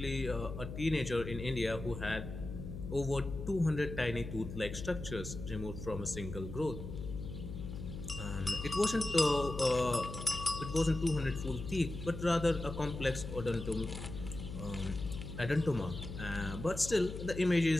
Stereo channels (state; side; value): noise; left; hum, 8 dB below the sound